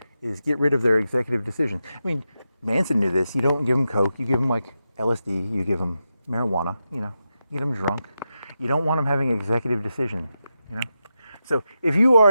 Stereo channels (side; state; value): both; inverted; correlation -0.89